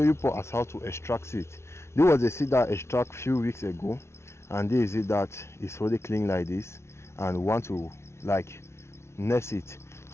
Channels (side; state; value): right; late; 0.13 ms